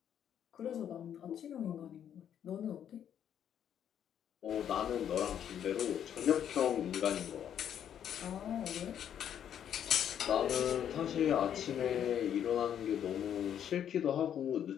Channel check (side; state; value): right; quieter; 9.4 dB